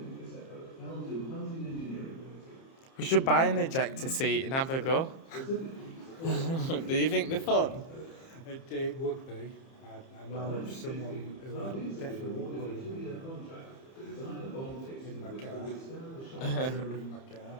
this effort fell to Hunting Engineering Limited. We should buy an ejector seat and have a go. Specifically, Do you think they're fun? It would be. I know of someone who I'd definitely put a two-year contract to design a bomb casing in my which car. would withstand the shock. in my car.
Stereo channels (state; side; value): late; right; 30 ms